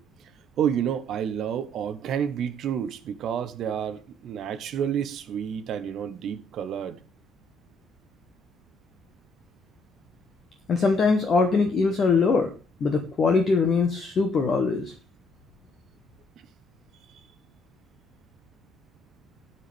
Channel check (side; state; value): both; normal; correlation 0.67